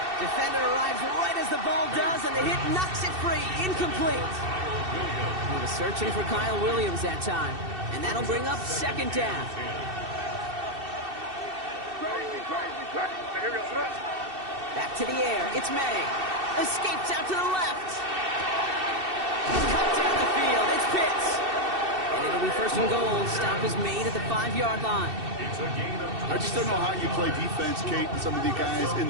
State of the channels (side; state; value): left; late; 2.7 ms